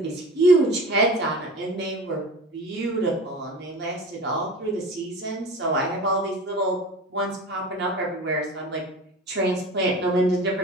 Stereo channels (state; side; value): normal; both; correlation 0.35